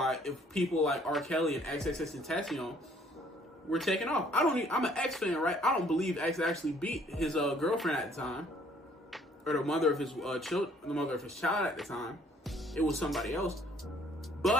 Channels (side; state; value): both; normal; correlation 0.61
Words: if people like R. Kelly and XXXTentacion were taken off. I'm an X fan, right? I don't believe X actually beat his girlfriend at the time, or the mother of his child at the time. It was somebody else.